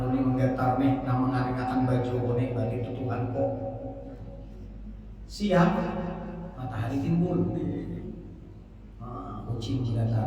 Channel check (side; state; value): both; identical; correlation 1.00